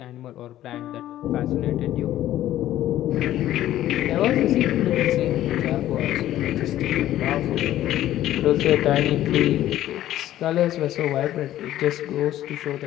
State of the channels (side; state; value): right; quieter; 13.3 dB